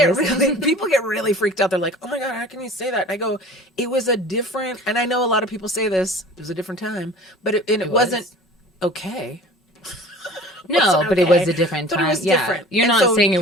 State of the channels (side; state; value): both; normal; correlation 0.43